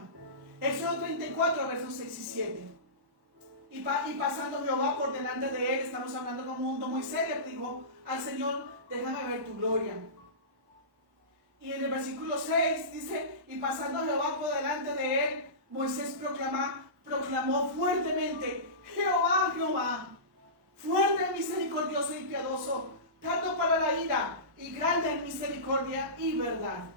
Éxodo 34, versos 6 y 7. Y pasando Jehová por delante de él, estamos hablando como un mundo Moisés le dijo al Señor, déjame ver tu gloria. Y en el versículo 6 dice, y pasando Jehová por delante de él, Moisés proclamó fuertemente, Jehová, Jehová, fuerte, misericordioso y piadoso, tardo para la ira y grande en misericordia y verdad.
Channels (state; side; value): late; left; 1.1 ms